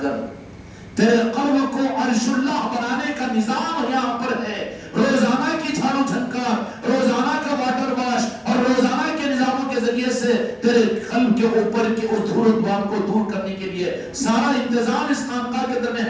کر تیرے قلب کو عرش اللہ بنانے کا نظام یہاں پر ہے. روزانہ کی جھاڑو جھنکار، روزانہ کا واٹر واش اور روزانہ کے نظاموں کے ذریعے سے تیرے قلب کے اوپر کے اس دھول و دھوان کو دور کرنے کے لیے سارا انتظام اس خانقاہ کے اندر میں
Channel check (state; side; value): identical; both; correlation 1.00